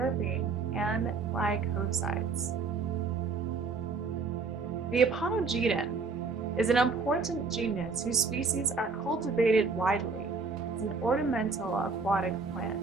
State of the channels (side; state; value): left; quieter; 4.5 dB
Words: and glycosides. The Aponogeton is an important genus whose species are cultivated widely as an ornamental aquatic plant.